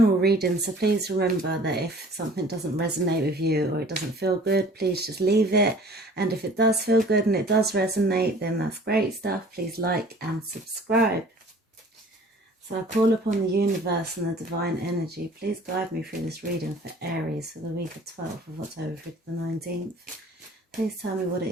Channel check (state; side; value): normal; both; correlation 0.49